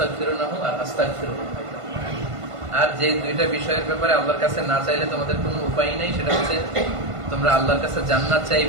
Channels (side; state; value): left; late; 1.5 ms